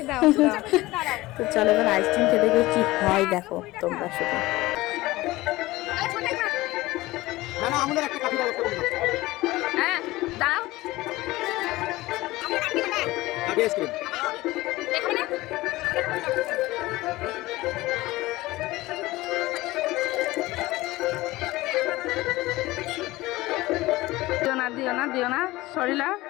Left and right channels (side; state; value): right; quieter; 19.0 dB